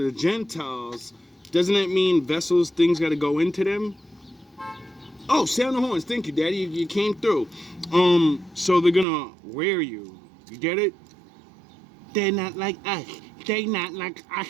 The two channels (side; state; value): left; drops out; at 9.1 s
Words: Gentiles, doesn't that mean vessels, things got to go into them? Oh, sound the horns. Thank you, Daddy. You came through. So they're gonna wear you. You get it? They're not like us. They not like us,